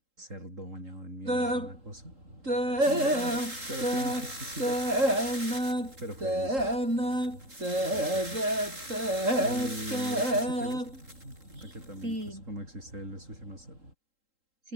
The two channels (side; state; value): left; late; 3.8 ms